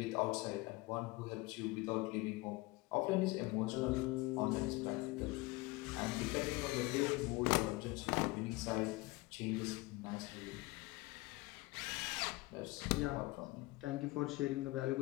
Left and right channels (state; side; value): quieter; right; 22.3 dB